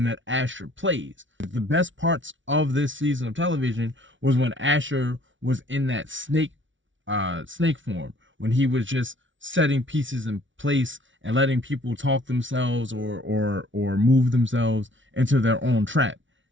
that Ashur plays. The best parts of this season of television was when Ashur was in that snake form, when he was just setting pieces in place and letting people talk themselves or move themselves into their own trap.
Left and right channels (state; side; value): late; left; 0.56 ms